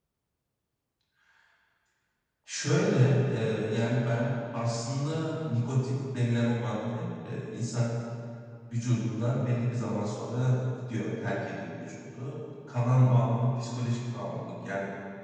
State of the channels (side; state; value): both; identical; correlation 1.00